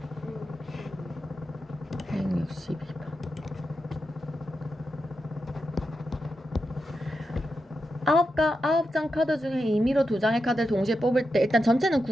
162번 9장 카드 중에 임의로 2장의 카드를 동시에 뽑을 때 일단 전체는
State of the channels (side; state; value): both; normal; correlation 0.88